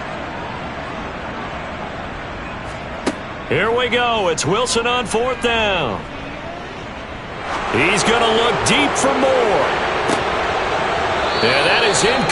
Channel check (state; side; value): identical; both; correlation 1.00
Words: Here we go. It's Wilson on 4th down. He's going to look deep for more. And that is